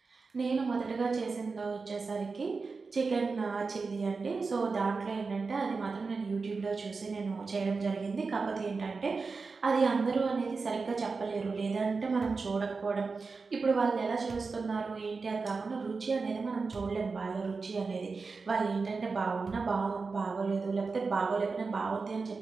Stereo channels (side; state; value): left; quieter; 4.4 dB